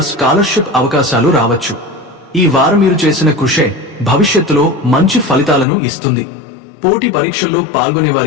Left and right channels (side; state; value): right; drops out; at 5.7 s